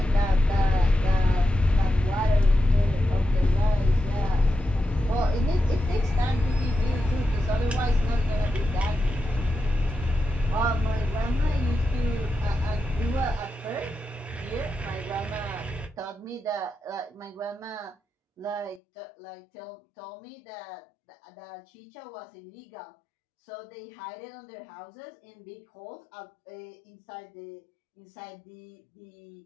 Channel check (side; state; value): right; drops out; at 18.8 s